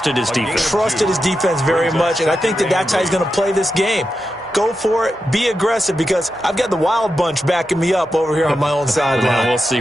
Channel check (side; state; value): both; normal; correlation 0.89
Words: his defense. Trusted his defense very much, and I think that's how he's going to play this game. Go for it. Be aggressive, because I've got the wild bunch backing me up over here on my own sideline. Well, we'll see